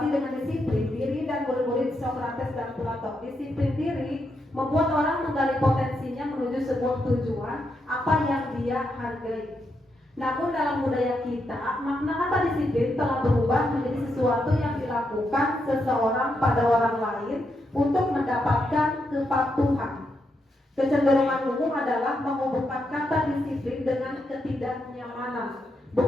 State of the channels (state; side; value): normal; both; correlation 0.82